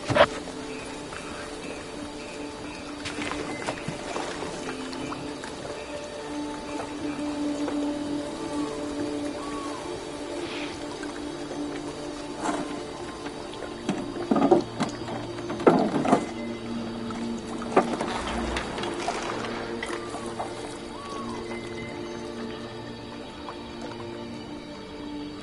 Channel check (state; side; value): identical; both; correlation 1.00